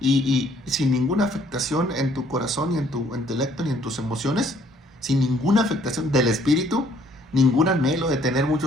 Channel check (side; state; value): both; normal; correlation 0.62